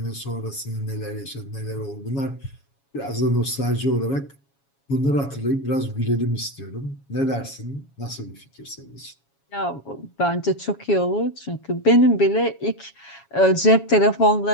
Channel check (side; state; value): right; late; 7.2 ms